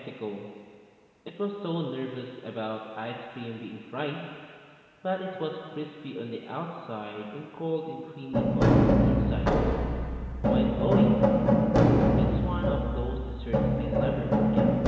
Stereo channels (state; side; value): identical; both; correlation 1.00